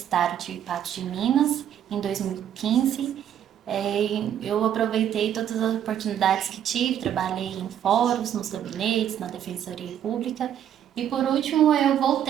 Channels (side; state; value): left; quieter; 10.0 dB